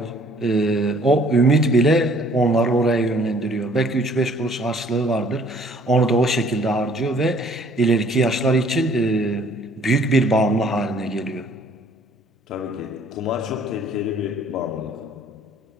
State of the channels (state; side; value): normal; both; correlation 0.58